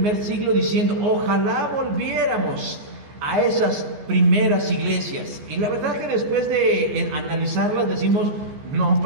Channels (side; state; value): left; late; 14 ms